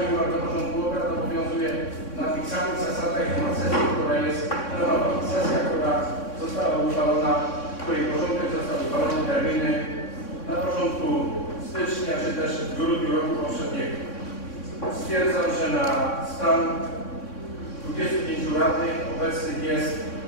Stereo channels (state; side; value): late; right; 3.6 ms